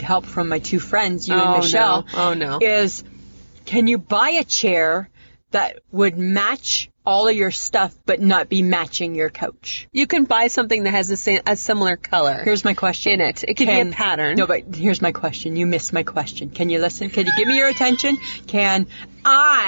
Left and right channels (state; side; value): inverted; both; correlation -1.00